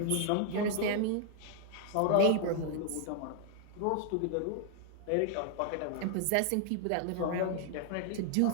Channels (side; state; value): both; different; correlation 0.00